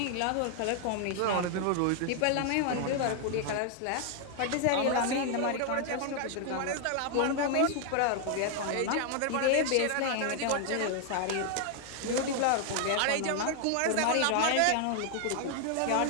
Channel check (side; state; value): both; different; correlation 0.00